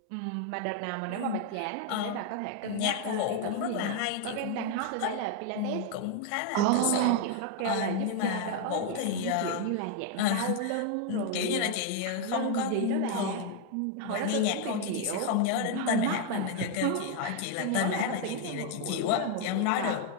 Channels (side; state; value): both; different; correlation 0.01